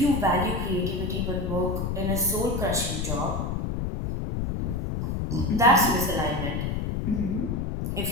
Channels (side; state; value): left; noise; rumble, 2 dB below the sound